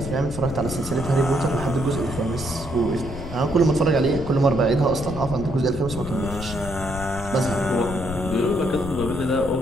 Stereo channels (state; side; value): noise; left; rumble, 9 dB below the sound